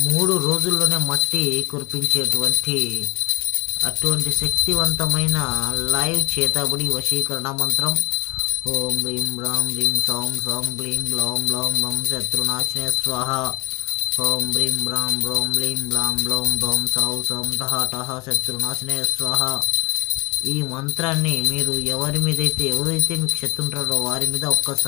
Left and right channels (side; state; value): right; quieter; 26.6 dB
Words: 3 రోజుల్లోనే మట్టి కురిపించేటువంటి అటువంటి శక్తివంతమైన లైవ్ చేతబడి వశీకరణ మంత్రం. ఓం హ్రీం రాం హ్రీం సౌం సౌం హ్లీం గ్లౌం గ్లౌం లం శత్రునాశనే స్వాహ. ఓం హ్రీం రాం రోం హ్లీం గ్లాం గ్లౌం గౌం సౌ సౌం టహ టహ శత్రునాశనే స్వాహ. ఈ మంత్రాన్ని మీరు ఎవరైతే మీకు శత్రు ఉంటారో వారి మీద